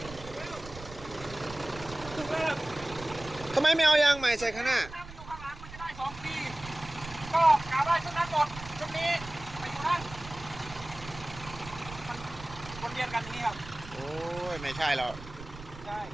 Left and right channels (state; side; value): noise; right; rumble, 14 dB below the sound